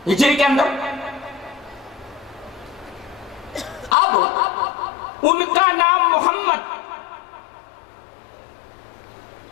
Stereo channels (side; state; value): right; drops out; at 4.0 s